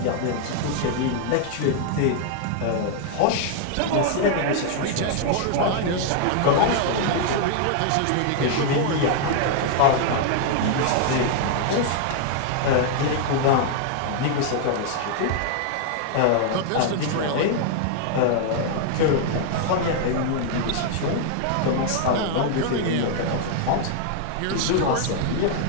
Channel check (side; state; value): both; different; correlation 0.00